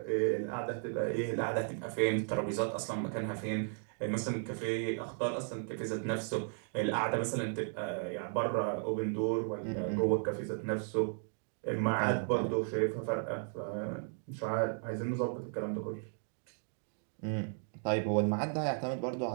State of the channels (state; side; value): silent; left; 54 dB below the other